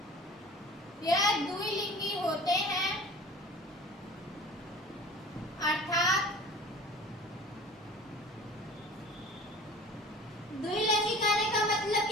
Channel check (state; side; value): normal; both; correlation 0.43